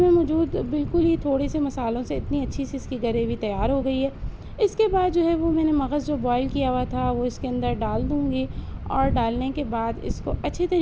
मौजूद बिल्कुल ही थोड़े से मसालों से इतनी अच्छी सी इसकी ग्रेवी तैयार हो गई है। इसके बाद जो है वो मैंने मगज़ जो बॉईल किया हुआ था वो इसके अंदर डाल दूँगी और डालने के बाद इसको अच्छे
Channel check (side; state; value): both; identical; correlation 1.00